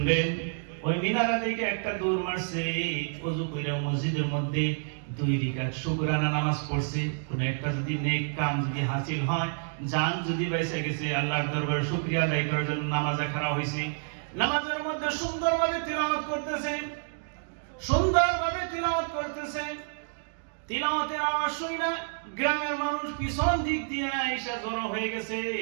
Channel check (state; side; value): silent; left; digital silence